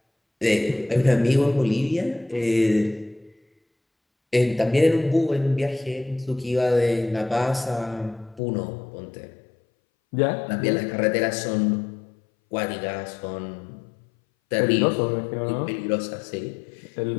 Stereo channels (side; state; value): right; drops out; at 8.4 s